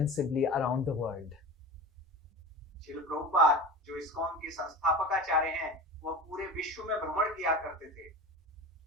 around the world. Srila Prabhupada जो इस्कॉन के संस्थापकाचार्य हैं, वो पूरे विश्व में भ्रमण किया करते थे।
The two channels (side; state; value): both; normal; correlation 0.32